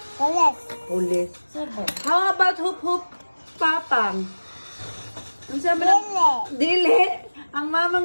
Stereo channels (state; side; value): inverted; both; correlation -1.00